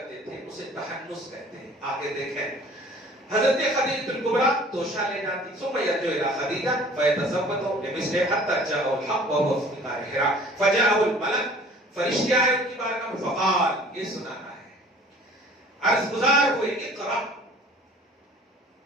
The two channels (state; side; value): normal; both; correlation 0.49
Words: تھے اسے تحنس کہتے ہیں. آگے دیکھیں، حضرت خدیجہ الکبریٰ توشہ لے جاتی، ثم یرجع الی خدیجہ فیتزوج لمثلہ حتی جاءہ الحق وهو فی غار حراء فجاءہ الملک. فرشتے آئے ان کی بارگاہ میں، فقال، یہ سنانا ہے، عرض گزار ہوئے، اقرا،